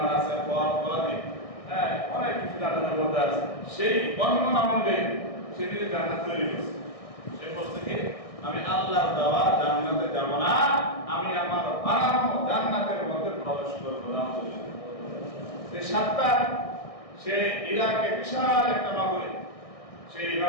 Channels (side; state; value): right; late; 1.6 ms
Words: আছে, ফল ফলাদি, হ্যাঁ, অনেক কিছু জান্নাতের মধ্যে আছে। সেই বর্ণনা অনুযায়ী সে নিজে জান্নাত তৈরি করছে। সে বলছে কি, আমি আল্লাহর দেওয়া জান্নাতে যাব না, আমি আমার বানানো জান্নাতের মধ্যে প্রবেশ করবো না। সে সাত্তার, সে ইরাকে বিশাল একটা নগরী, সেই